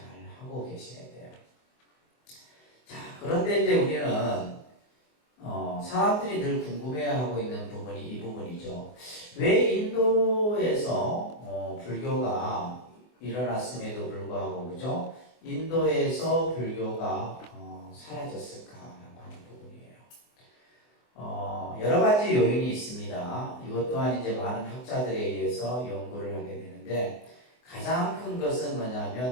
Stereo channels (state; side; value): late; right; 24 ms